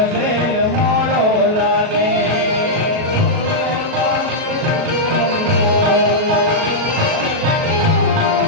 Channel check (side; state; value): left; late; 37 ms